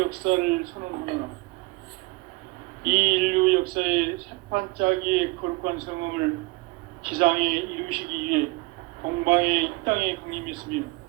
선언하노라. 이 인류 역사의 새판짜기의 거룩한 성음을 지상에 이루시기 위해 동방의 이 땅에 강림했으며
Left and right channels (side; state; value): left; quieter; 24.7 dB